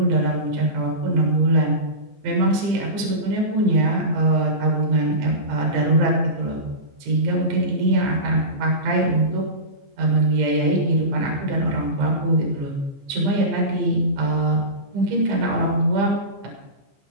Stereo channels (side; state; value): left; late; 15 ms